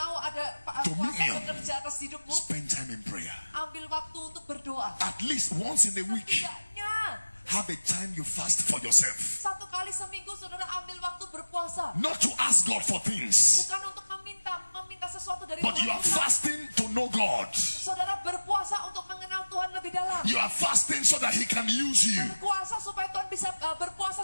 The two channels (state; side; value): inverted; both; correlation -1.00